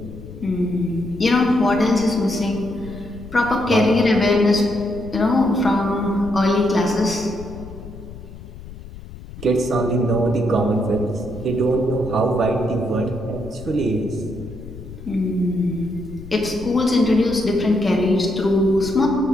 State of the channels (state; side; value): noise; left; rumble, 15 dB below the sound